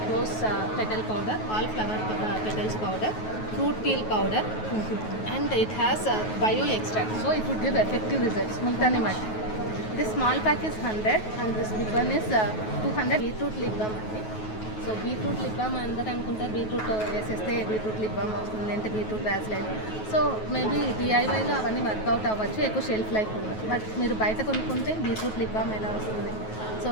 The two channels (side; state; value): right; late; 9.3 ms